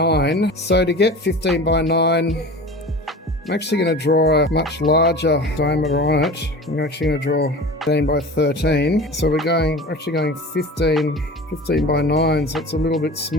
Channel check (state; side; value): normal; both; correlation 0.36